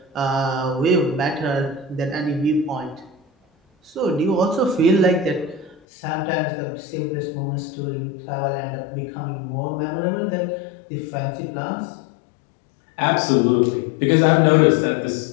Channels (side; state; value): right; drops out; at 5.8 s